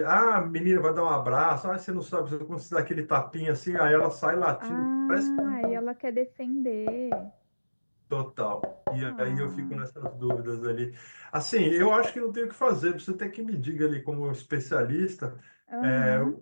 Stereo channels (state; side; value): inverted; both; correlation -1.00